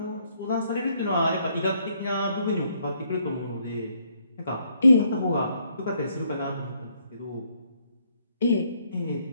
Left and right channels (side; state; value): both; inverted; correlation -0.71